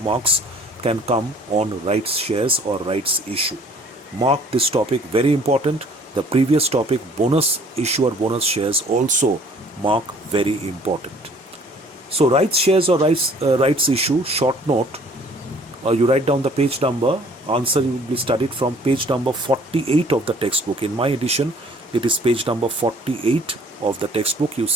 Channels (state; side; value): normal; both; correlation 0.55